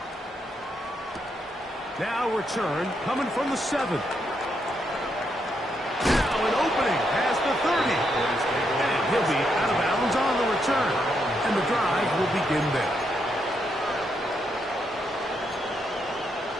Now return coming from the 7. Now an opening past the 30. And he'll be out of bounds on the return. And the drive will begin there.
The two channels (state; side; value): normal; both; correlation 0.79